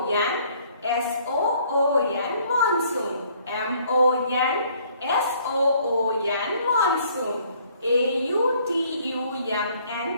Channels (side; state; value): both; inverted; correlation -0.61